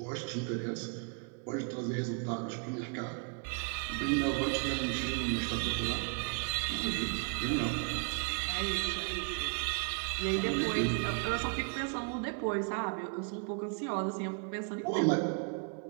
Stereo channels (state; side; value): quieter; left; 39.3 dB